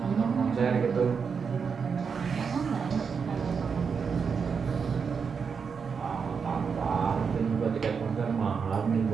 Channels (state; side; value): quieter; left; 5.9 dB